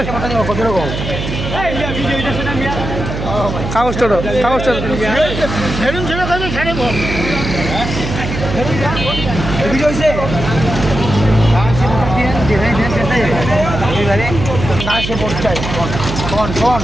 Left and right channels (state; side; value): noise; right; hum, 5 dB below the sound